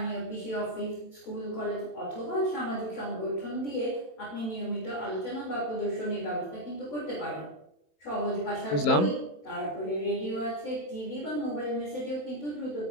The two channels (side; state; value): right; late; 27 ms